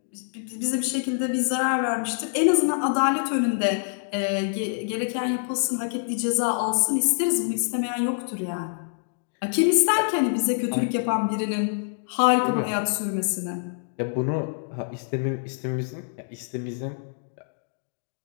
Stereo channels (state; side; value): silent; right; digital silence